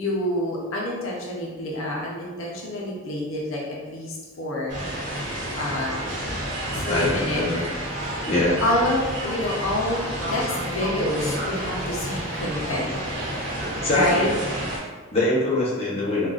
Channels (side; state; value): both; normal; correlation 0.22